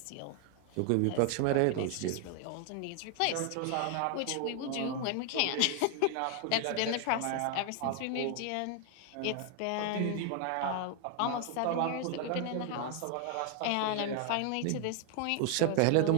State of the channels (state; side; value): different; both; correlation 0.00